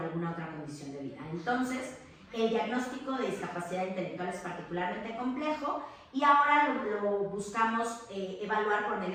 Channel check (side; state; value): both; identical; correlation 1.00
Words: otra condición de vida. Entonces, el diagnóstico de discapacidad intelectual es particularmente complejo y ahora lo buscamos evaluar por